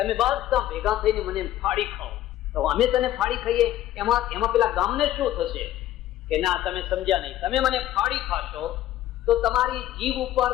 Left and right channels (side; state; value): right; quieter; 13.5 dB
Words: બધા ભેગા થઈને મને ફાડી ખાઓ. તો અમે તને ફાડી ખાઈએ, એમાં પેલા ગામને શું થશે? કે ના, તમે સમજ્યા નહીં. તમે મને ફાડી ખાશો તો તમારી જીભ ઉપર